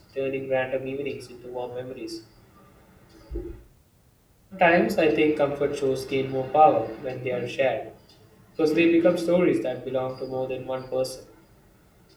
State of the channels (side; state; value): both; identical; correlation 1.00